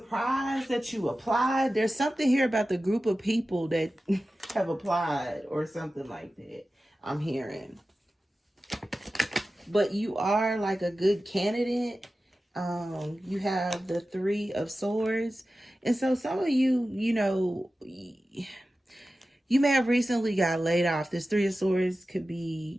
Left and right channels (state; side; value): normal; both; correlation 0.94